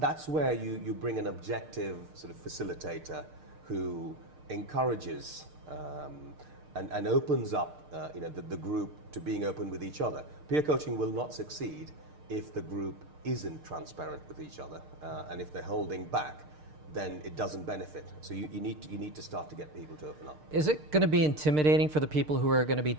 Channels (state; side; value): late; left; 6.6 ms